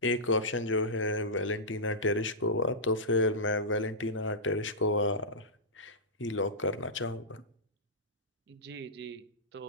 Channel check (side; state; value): both; normal; correlation -0.15